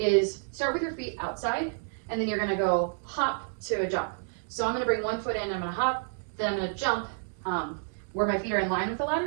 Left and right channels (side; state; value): left; silent; digital silence